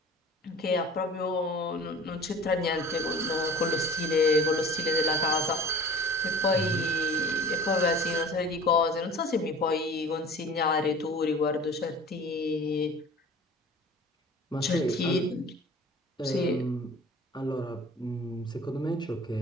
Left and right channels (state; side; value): normal; both; correlation 0.42